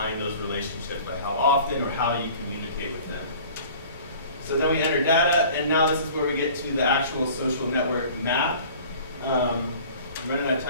those relationships, like how often or how you communicate with them. So then we enter data, and now this is where we get to the actual social network map. I'm running out of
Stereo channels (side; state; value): both; inverted; correlation -0.46